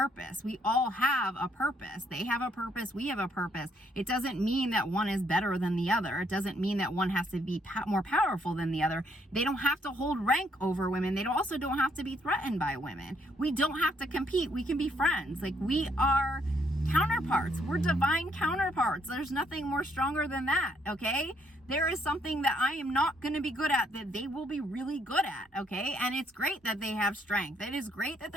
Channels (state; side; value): normal; both; correlation 0.70